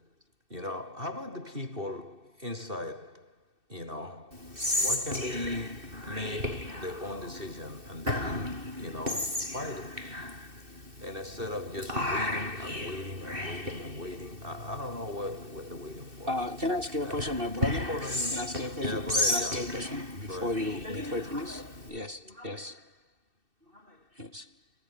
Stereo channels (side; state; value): left; late; 2.6 ms